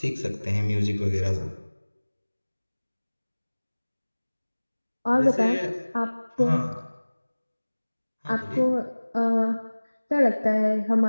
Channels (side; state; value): both; inverted; correlation -1.00